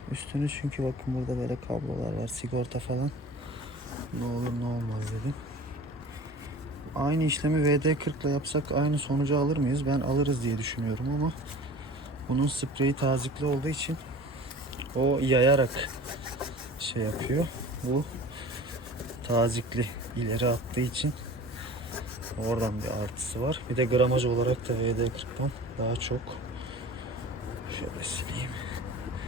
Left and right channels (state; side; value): normal; both; correlation 0.41